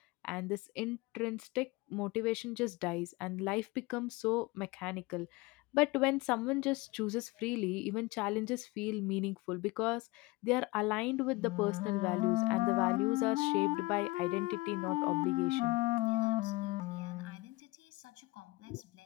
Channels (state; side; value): quieter; right; 22.0 dB